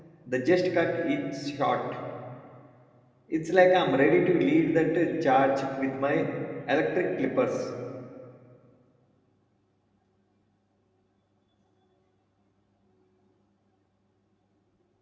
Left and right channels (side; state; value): both; identical; correlation 1.00